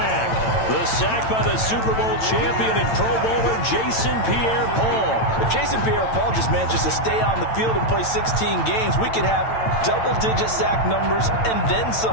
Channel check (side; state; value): right; late; 9.0 ms